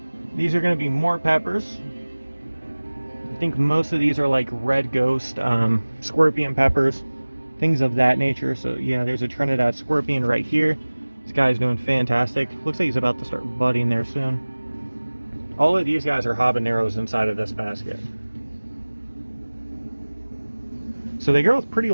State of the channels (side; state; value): both; inverted; correlation -1.00